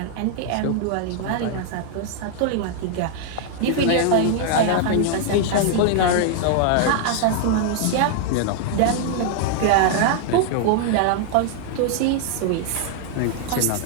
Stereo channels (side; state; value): both; different; correlation 0.00